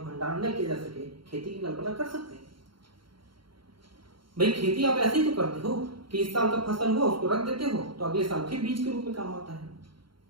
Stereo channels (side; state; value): left; late; 0.73 ms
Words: भंडारण न किया जा सके, खेती की कल्पना कर सकते हैं? भाई खेती आप ऐसे ही तो करते हो कि इस साल का फसल हुआ उसको रख देते हो तो अगले साल फिर बीज के रूप में काम आता है।